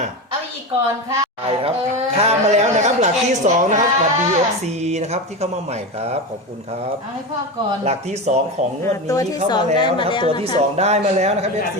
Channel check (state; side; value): normal; both; correlation 0.21